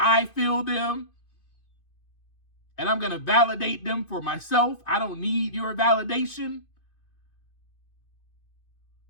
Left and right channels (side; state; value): right; late; 2.5 ms